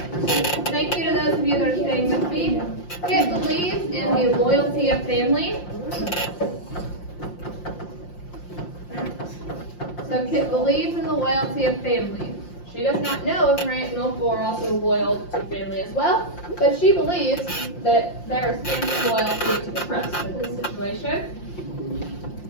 thank you to those of you that are staying with me. Kit believes in the loyalty of family. So Kit believes in the loyalty of family. She does not know if her aunt and uncle are also loyal to family as well, but she believes that there is family loyalty to trust in this situation.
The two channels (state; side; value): late; right; 5.7 ms